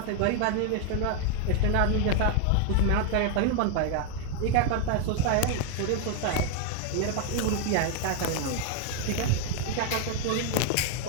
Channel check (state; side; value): different; both; correlation 0.01